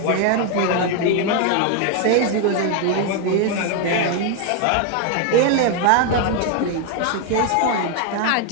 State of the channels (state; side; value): different; both; correlation 0.01